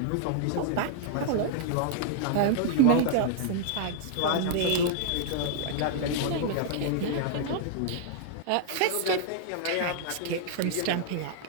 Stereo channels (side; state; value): both; different; correlation -0.01